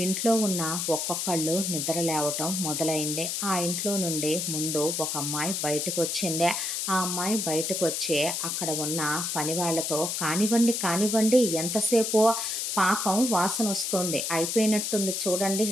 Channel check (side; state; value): left; noise; hiss, 1 dB below the sound